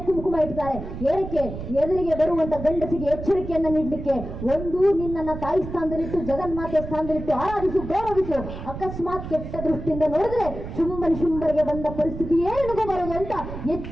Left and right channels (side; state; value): right; noise; rumble, 9 dB below the sound